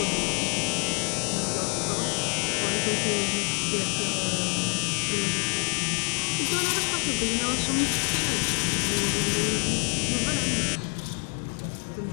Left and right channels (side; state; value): right; silent; digital silence